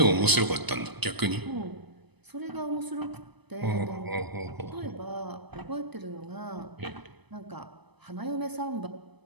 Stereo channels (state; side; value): late; left; 0.99 ms